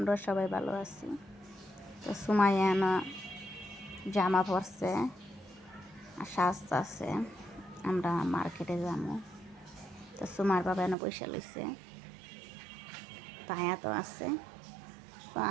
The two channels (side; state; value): left; drops out; at 11.0 s